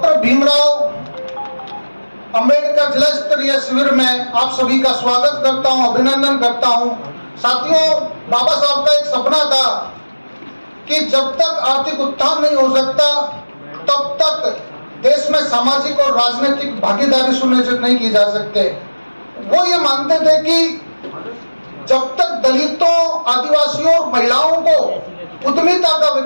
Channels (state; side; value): inverted; both; correlation -1.00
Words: भीमराव अंबेडकर जिला स्तरीय शिविर में आप सभी का स्वागत करता हूं, अभिनंदन करता हूं। साथियों, बाबा साहब का एक सपना था कि जब तक आर्थिक उत्थान नहीं हो सकता तब तक देश में सामाजिक और राजनीतिक भागीदारी सुनिश्चित नहीं की जा सकते। वो ये मानते थे कि जब तक दलितों, आदिवासियों और महिलाओं को उद्यमिता का